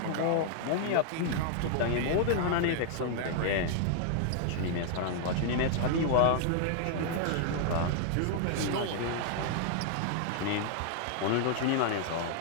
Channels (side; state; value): both; different; correlation 0.00